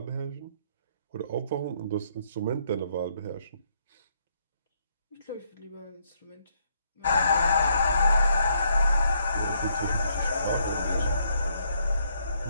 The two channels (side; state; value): both; inverted; correlation -0.72